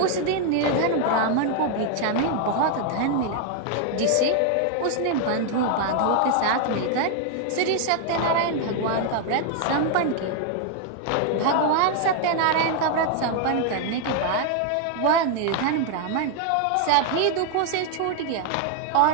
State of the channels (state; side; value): different; both; correlation 0.00